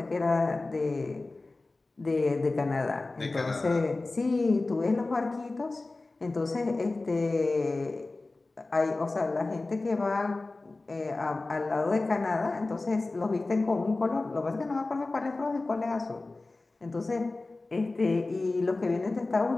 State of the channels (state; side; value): quieter; right; 3.3 dB